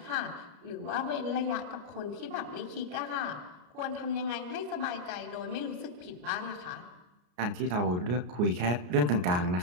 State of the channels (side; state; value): left; late; 33 ms